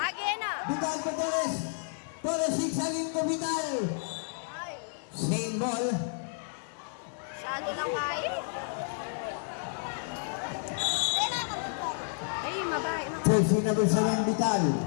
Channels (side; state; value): right; silent; digital silence